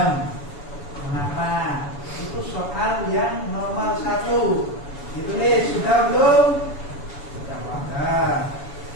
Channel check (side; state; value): right; late; 7.0 ms